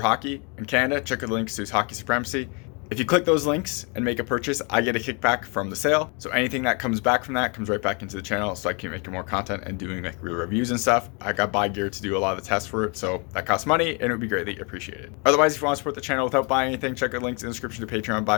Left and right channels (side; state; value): right; quieter; 33.1 dB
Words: Hockey. In Canada, check out the links to Hockey Supremacy. If you click those links and make a purchase, I get a kickback from the sale. So anything that comes back from that comes right back into the channel, so I keep making more content and doing like real reviews and stuff. I got buy gear to do a lot of the tests for it, so that costs money and it would be greatly appreciated. Otherwise, if you want to support the channel without buying anything, check out links in the description to Patreon,